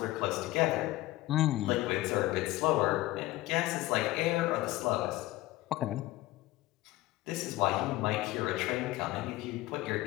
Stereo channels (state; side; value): quieter; right; 17.9 dB